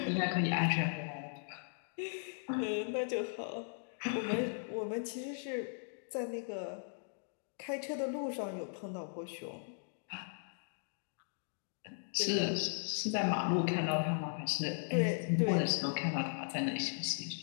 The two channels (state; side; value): silent; right; digital silence